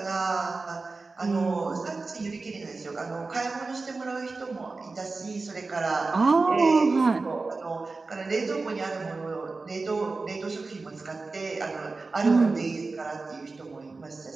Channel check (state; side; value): quieter; left; 3.8 dB